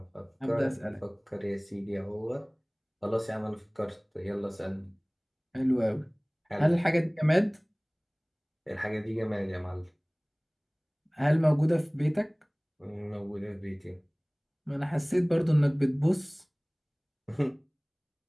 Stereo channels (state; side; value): identical; both; correlation 1.00